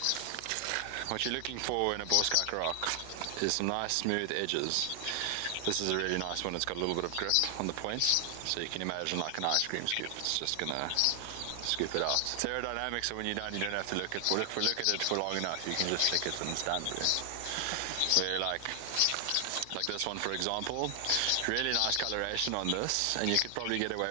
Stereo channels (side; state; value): both; different; correlation 0.00